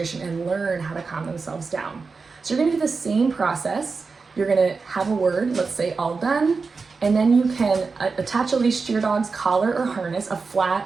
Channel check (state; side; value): quieter; left; 4.6 dB